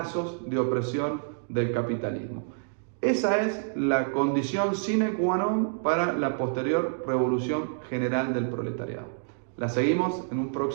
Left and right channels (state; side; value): silent; left; digital silence